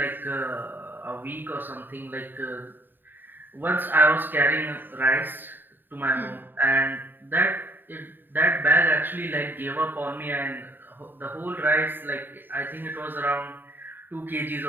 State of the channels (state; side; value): late; left; 0.093 ms